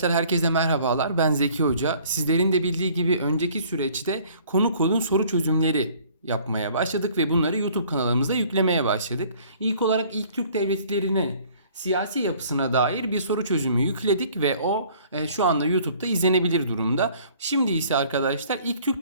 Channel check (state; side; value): inverted; both; correlation -0.55